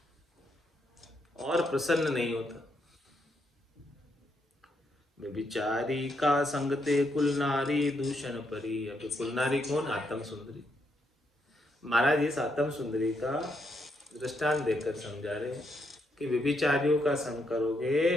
और प्रसन्न नहीं होता। व्यभिचारी का संगते कुल नारी दूषण परी। अब कुल नारी कौन? आत्म सुंदरी। महाराज इस आत्म सुंदरी का दृष्टांत देकर समझा रहे हैं कि व्यभिचारियों का संग करोगे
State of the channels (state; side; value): normal; both; correlation 0.78